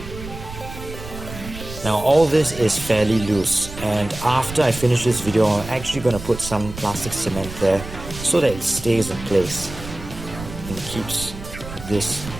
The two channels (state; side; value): noise; right; rumble, 12 dB below the sound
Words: Now all this is fairly loose, and after I finish this video I'm actually going to put some plastic cement there so that it stays in place and keeps this